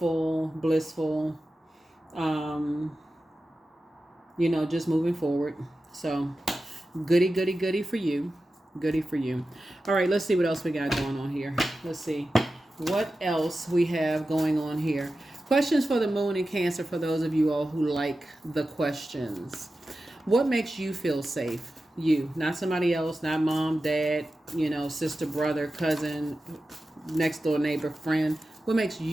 blissful, you know, just moving forward. So goody for you. All right, let's see what else we got going on here. Let's see what else we have going on here. Questions for the moon in Cancer for those of you all who like the questions. What makes you feel safe? You, not somebody else, not mom, dad, you know, sister, brother, cousin, next door neighbor, friend. What makes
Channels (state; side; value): normal; both; correlation 0.93